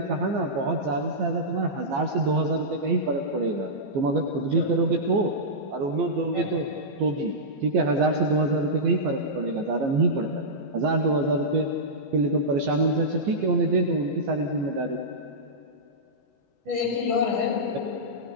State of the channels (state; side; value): late; left; 15 ms